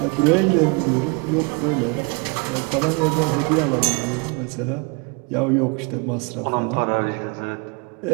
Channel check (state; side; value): quieter; left; 30.6 dB